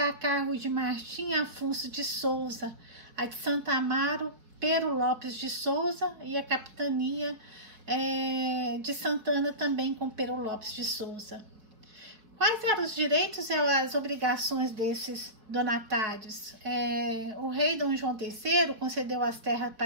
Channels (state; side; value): late; left; 4.7 ms